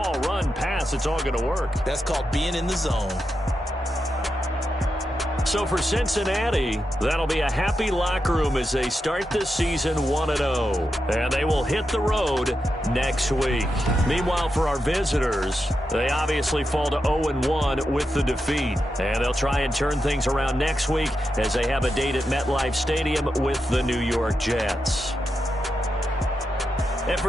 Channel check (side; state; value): both; normal; correlation 0.87